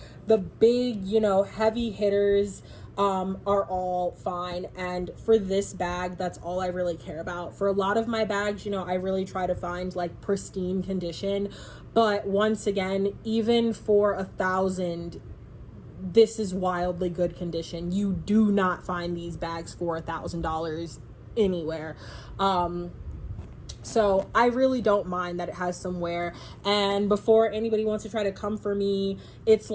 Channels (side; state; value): both; identical; correlation 1.00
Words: the big, heavy hitters are all fine. And for this bag, that's all I really care about. For a lot of my bags, I really try to find like pristine condition. But once again, even for $1,000, this is wildly good condition. You do not find these bags for $1,000 anywhere. So I really don't mind that it has some wear. And before anybody wants to try to come for me, it's